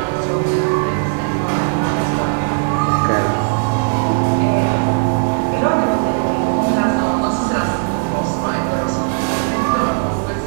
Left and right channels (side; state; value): left; silent; digital silence